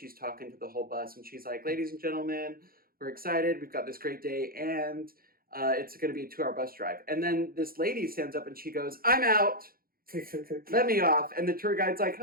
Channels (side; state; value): left; late; 0.43 ms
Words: talking to the whole bus, and she's like, ladies and gentlemen, we're excited. We've got this great day, and it's going to be a 2-hour bus drive. And then this lady stands up, and she goes, I'm out. let me off. And the tour guide's like,